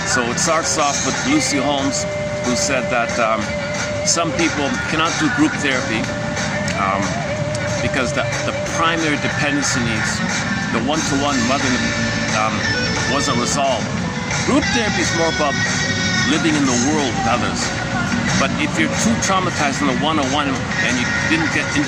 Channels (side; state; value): both; identical; correlation 1.00